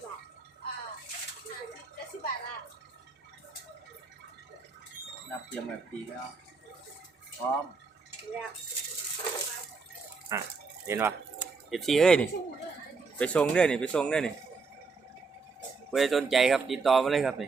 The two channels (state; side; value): quieter; left; 4.6 dB